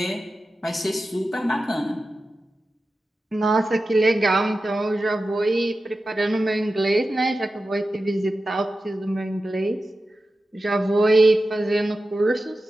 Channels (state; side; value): normal; both; correlation 0.93